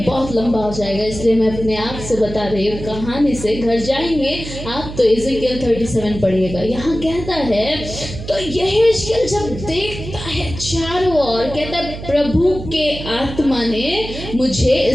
बहुत लंबा हो जाएगा, इसलिए मैं अपने आप से बता रही हूँ। कहानी से घर जाएंगे आप तो इज़ेकियल 37 पढ़िएगा। यहाँ कहता है, तो यहेजकेल जब देखता है चारों ओर, कहता है प्रभु के आत्मा ने मुझे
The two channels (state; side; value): noise; right; hum, 10 dB below the sound